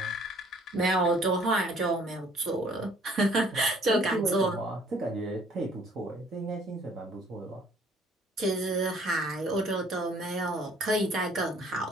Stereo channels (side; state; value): both; normal; correlation 0.58